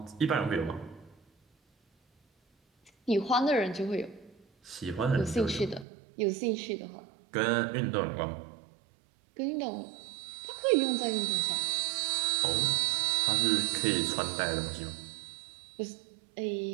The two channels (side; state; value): left; drops out; at 5.9 s